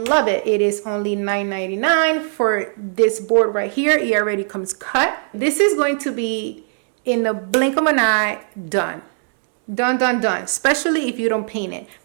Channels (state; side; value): silent; left; digital silence